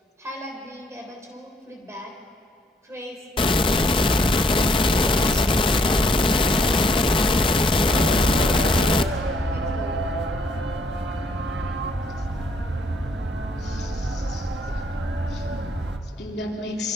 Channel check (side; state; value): both; normal; correlation 0.68